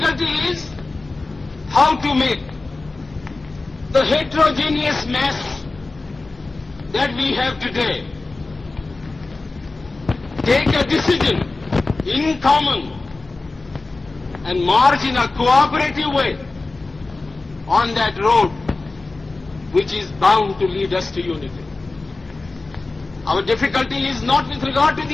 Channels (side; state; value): right; quieter; 3.4 dB